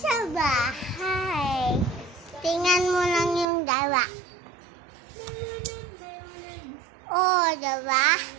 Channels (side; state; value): left; drops out; at 3.5 s